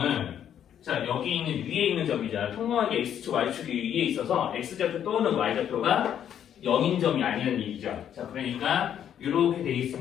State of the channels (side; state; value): right; quieter; 9.6 dB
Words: 자, 여기 있는 위에 있는 점이잖아. 평범하게 X축, Y축이 위에 있어서 X좌표 또는 Y좌표가 0인 점이 아니라는 얘기죠. 자, 그러니까 이렇게 돼